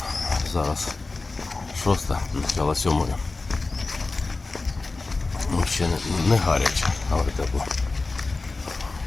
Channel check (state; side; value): quieter; right; 3.6 dB